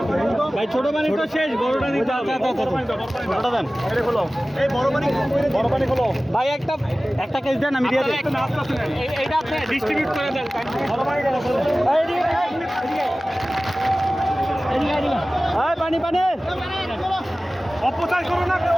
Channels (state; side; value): normal; both; correlation 0.97